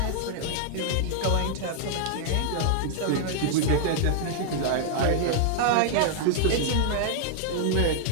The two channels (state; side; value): different; both; correlation -0.01